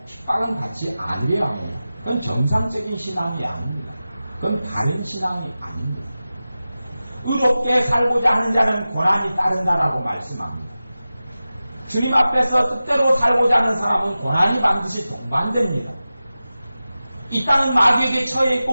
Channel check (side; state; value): both; inverted; correlation -0.95